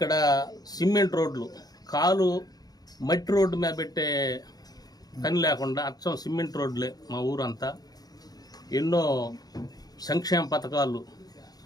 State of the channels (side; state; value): right; late; 0.19 ms